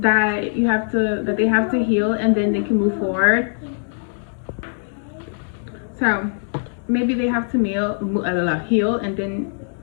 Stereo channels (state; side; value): silent; right; digital silence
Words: they have to heal, and then they can move forward. So maybe they have to heal, and then